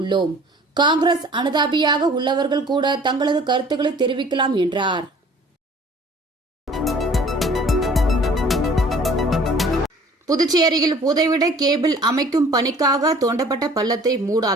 காங்கிரஸ் அனுதாபியாக உள்ளவர்கள் கூட தங்களது கருத்துக்களை தெரிவிக்கலாம் என்றார். புதுச்சேரியில் புதைவிட கேபிள் அமைக்கும் பணிக்காக தோண்டப்பட்ட பள்ளத்தை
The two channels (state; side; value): normal; both; correlation 0.51